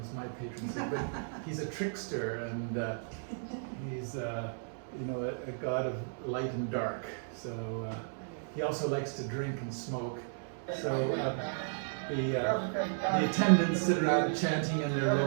my patron saint. But he's a trickster, and he's a god of light and dark. So he also likes to drink and smoke. So the attendants sit around chanting in their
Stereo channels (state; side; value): silent; left; digital silence